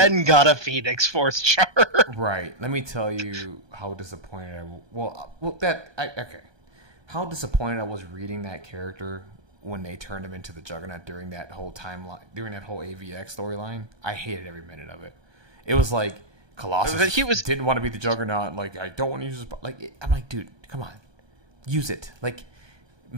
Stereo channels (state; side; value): late; left; 1.2 ms